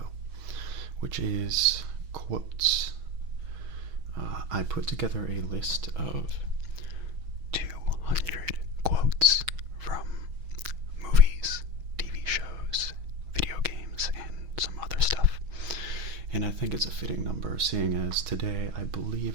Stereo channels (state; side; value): late; left; 6.3 ms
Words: which is quotes. I put together a list of 200 quotes from movies, TV shows, video games, and some other stuff. And I think it's a fitting number, seeing as today I